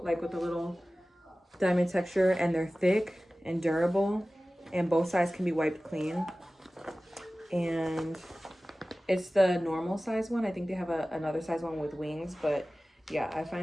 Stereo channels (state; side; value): normal; both; correlation 0.97